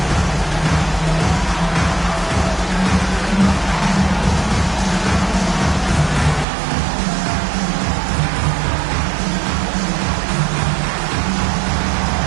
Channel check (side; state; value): left; drops out; at 6.5 s